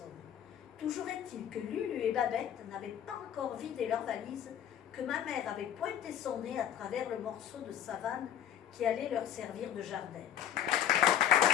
Toujours est-il que Lulu et Babette n'avaient pas encore vidé leur valise, que ma mère avait pointé son nez à travers le morceau de savane qui allait leur servir de jardin.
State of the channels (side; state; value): right; quieter; 9.9 dB